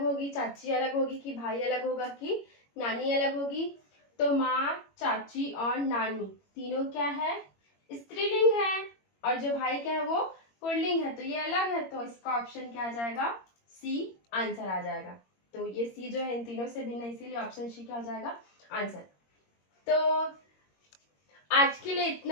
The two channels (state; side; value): late; right; 21 ms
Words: होगी, चाची अलग होगी, कि भाई अलग होगा, कि नानी अलग होगी। तो माँ, चाची और नानी तीनों क्या है, स्त्रीलिंग है, और जो भाई क्या है वो पुल्लिंग है, तो ये अलग है। तो इसका ऑप्शन क्या आ जाएगा, सी आंसर आ जाएगा। तो ये सी जो है इन तीनों से भिन्न है, इसीलिए ऑप्शन सी क्या हो जाएगा, आंसर। तो आज के लिए